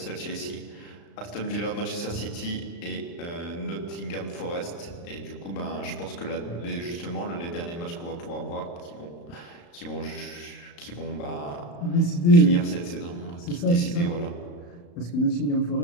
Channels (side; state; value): right; late; 35 ms